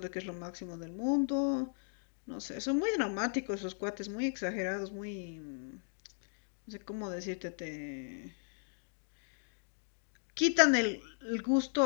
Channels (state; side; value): silent; right; digital silence